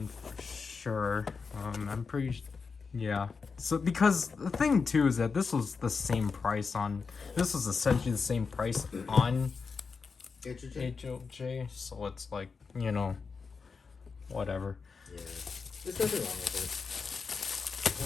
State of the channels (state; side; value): quieter; right; 5.1 dB